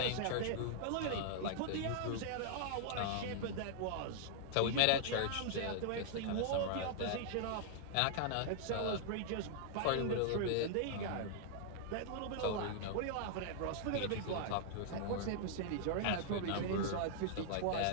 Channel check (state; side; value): different; both; correlation -0.01